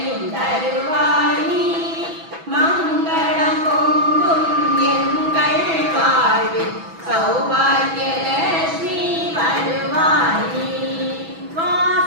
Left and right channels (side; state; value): left; late; 6.1 ms